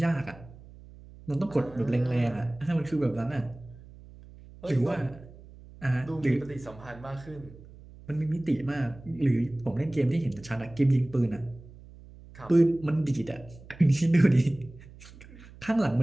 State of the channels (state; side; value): noise; right; hum, 20 dB below the sound